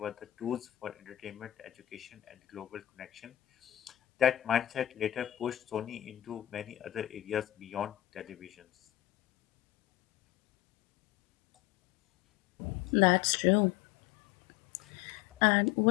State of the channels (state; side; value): quieter; right; 14.2 dB